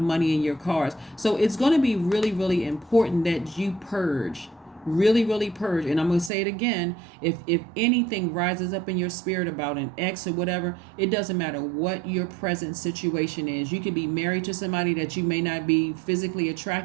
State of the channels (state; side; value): drops out; left; at 6.3 s